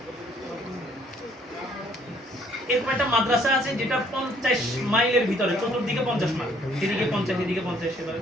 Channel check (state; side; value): normal; both; correlation 0.63